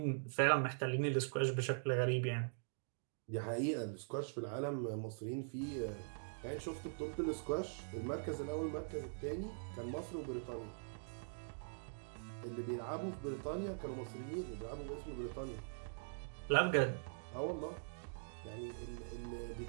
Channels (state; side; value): silent; left; digital silence